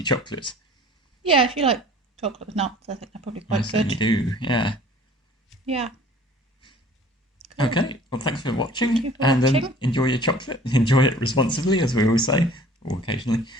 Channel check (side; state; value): both; normal; correlation 0.49